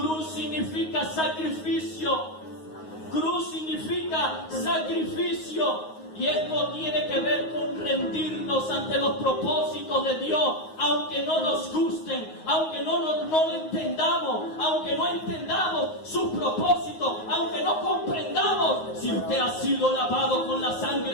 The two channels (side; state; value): right; late; 9.5 ms